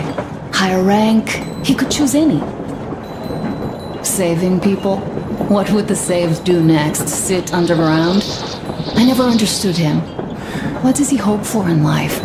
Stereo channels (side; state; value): both; identical; correlation 1.00